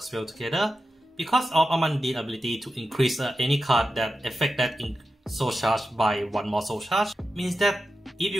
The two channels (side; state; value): both; normal; correlation 0.91